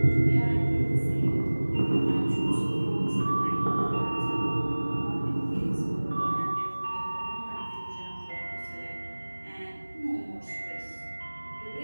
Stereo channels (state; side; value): inverted; both; correlation -1.00